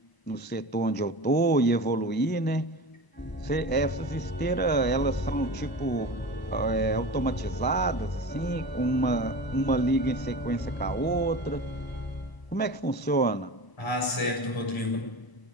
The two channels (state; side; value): late; right; 1.0 ms